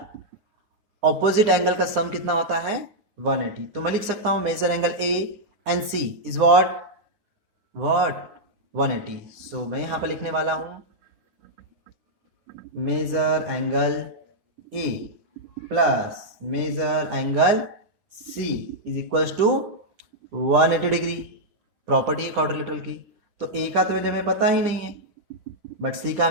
opposite angle का सम कितना होता है, 180। तो मैं लिख सकता हूं measure angle A and C is what 180। So मैं यहां पर लिखने वाला हूं measure angle A plus measure angle C is equals to 180 degree. Property है क्वाड्रिलेटरल की। तो ए का तो वैल्यू हमें पता ही नहीं है, बट सी का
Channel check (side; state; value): left; late; 9.8 ms